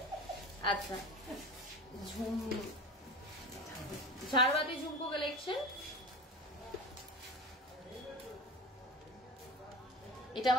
আচ্ছা, ঝাড়বাতি ঝুমকো কালেকশন, এটা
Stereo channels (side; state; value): both; normal; correlation 0.32